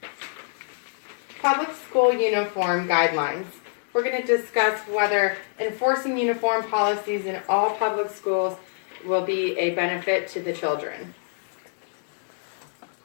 Public school uniform guidelines. We're going to discuss whether enforcing uniform policies in all public schools will be a benefit to the children.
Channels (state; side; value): silent; right; 61 dB below the other